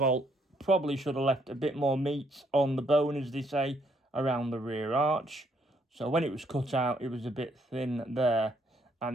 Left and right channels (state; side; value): normal; both; correlation 0.70